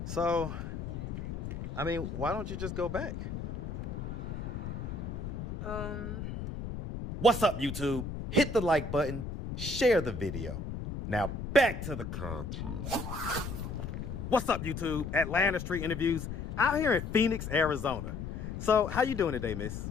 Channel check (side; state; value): left; noise; rumble, 6 dB below the sound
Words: So, why don't you just go back? What's up, YouTube? Hit the like button, share the video. Now back to the content. What's up, YouTube? Atlanta Street Interviews out here in Phoenix, Arizona. So, how you doing today, miss?